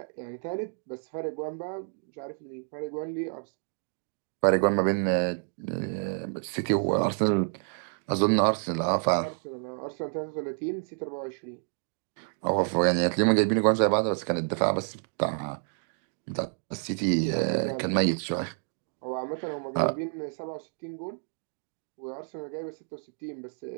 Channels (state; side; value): silent; left; 58 dB below the other